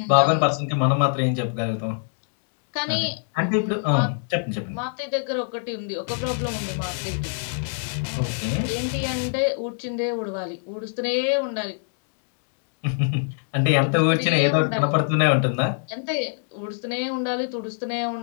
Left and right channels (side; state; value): right; silent; digital silence